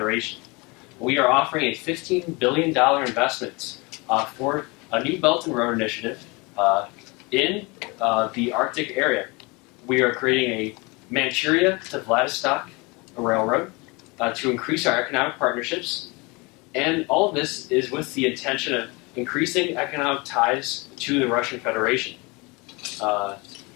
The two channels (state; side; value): quieter; right; 26.9 dB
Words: We are offering a $15 billion investment for a new Belt and Road Initiative in the Arctic area. We are creating a Manchuria to Vladivostok railroad to increase our economic partnerships, and all of this is with the intention of increasing economic ties to the Russian Federation.